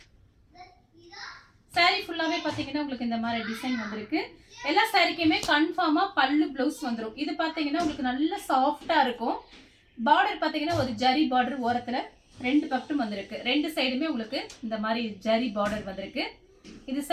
சாரீ ஃபுல்லாவே பார்த்தீங்கன்னா உங்களுக்கு இந்த மாதிரி டிசைன் வந்திருக்கு. எல்லா சாரீக்குமே கன்ஃபார்மா பல்லு பிளவுஸ் வந்துடும். இது பார்த்தீங்கன்னா உங்களுக்கு நல்ல சாஃப்டா இருக்கும். பார்டர் பார்த்தீங்கன்னா ஒரு ஜரி பார்டர் ஓரத்தில் ரெண்டு பக்கட்டும் வந்திருக்கு. ரெண்டு சைடுமே உங்களுக்கு இந்த மாதிரி ஜரி பார்டர் வந்திருக்கு. இது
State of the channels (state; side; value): identical; both; correlation 1.00